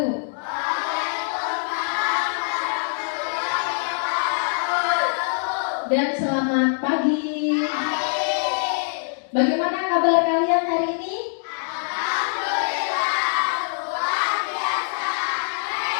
Dan selamat pagi. Bagaimana kabar kalian hari ini?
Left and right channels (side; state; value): right; silent; digital silence